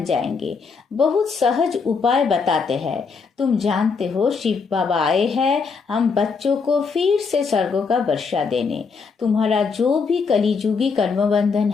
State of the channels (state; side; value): quieter; right; 5.1 dB